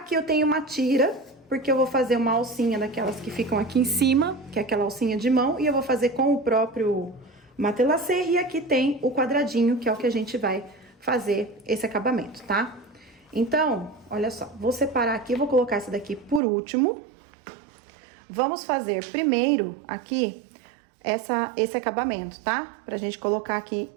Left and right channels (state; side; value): drops out; left; at 16.4 s